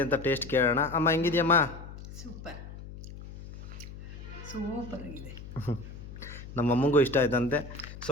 ಅಂತ ಟೇಸ್ಟ್ ಕೇಳೋಣ. ಅಮ್ಮ ಹೆಂಗಿದೆಯಮ್ಮ? ಸೂಪರ್ ಆಗಿದೆ. ನಮ್ಮ ಅಮ್ಮಂಗೂ ಇಷ್ಟ ಆಯ್ತಂತೆ, ಸೊ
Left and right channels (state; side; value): noise; left; hum, 13 dB below the sound